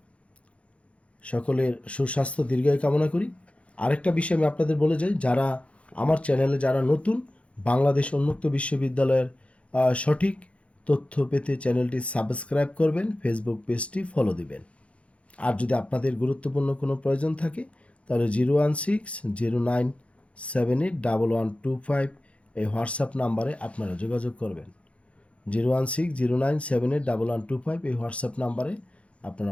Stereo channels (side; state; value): right; late; 0.062 ms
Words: সকলের সুস্বাস্থ্য দীর্ঘায়ু কামনা করি। আরেকটা বিষয় আমি আপনাদের বলে যাই, যারা আমার চ্যানেলে যারা নতুন, বাংলাদেশ উন্মুক্ত বিশ্ববিদ্যালয়ের সঠিক তথ্য পেতে চ্যানেলটি সাবস্ক্রাইব করবেন, ফেসবুক পেজটি ফলো দিবেন। আর যদি আপনাদের গুরুত্বপূর্ণ কোনো প্রয়োজন থাকে তাহলে 01609781125 এই হোয়াটসঅ্যাপ নাম্বারে আপনারা যোগাযোগ করবেন। 01609781125 এই হোয়াটসঅ্যাপ নাম্বারে আপনারা